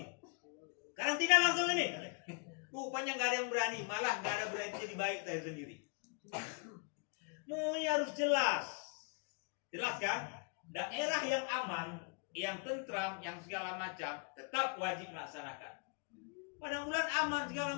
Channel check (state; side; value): quieter; right; 34.5 dB